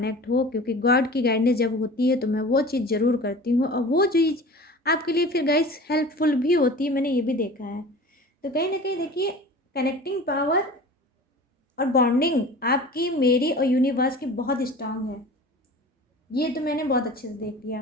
हो, क्योंकि गॉड की गाइडेंस जब होती है तो मैं वो चीज़ ज़रूर करती हूँ और वो चीज़ आपके लिए फिर गाइस हेल्पफुल भी होती है, मैंने ये भी देखा है। तो कहीं ना कहीं देखिए कनेक्टिंग पावर और बॉन्डिंग आपकी, मेरी और यूनिवर्स की बहुत स्ट्रांग है। ये तो मैंने बहुत अच्छे से देख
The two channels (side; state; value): both; normal; correlation 0.39